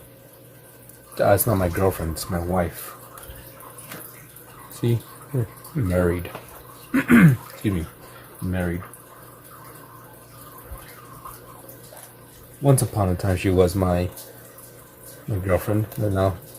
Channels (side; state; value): both; identical; correlation 1.00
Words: It's not my girlfriend, it's my wife. See, married. Excuse me, married. Once upon a time, she was my girlfriend, and now